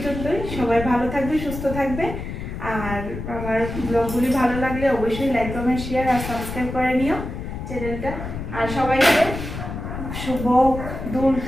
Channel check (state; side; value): noise; left; rumble, 7 dB below the sound